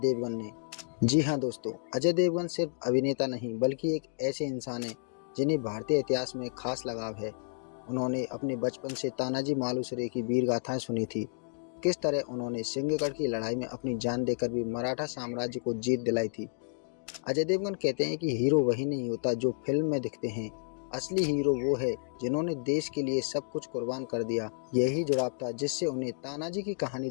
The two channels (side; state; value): right; silent; digital silence